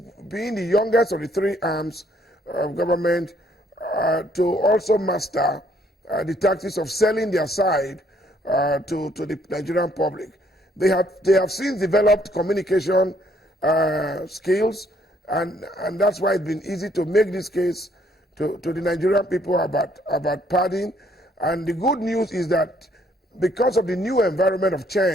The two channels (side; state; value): both; normal; correlation 0.66